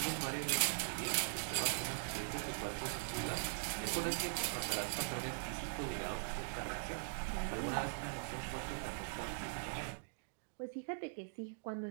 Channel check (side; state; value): left; silent; digital silence